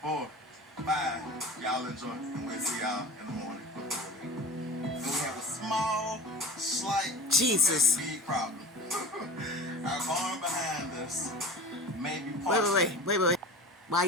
4, 5. Y'all enjoy, and we'll see y'all in the morning. So we have a small, slight, Jesus. big problem. Our barn behind us may be partial. Wait. Why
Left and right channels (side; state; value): both; normal; correlation 0.35